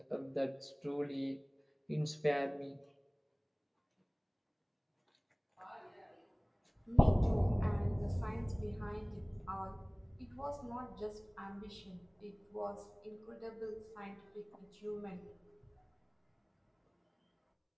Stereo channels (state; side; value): identical; both; correlation 1.00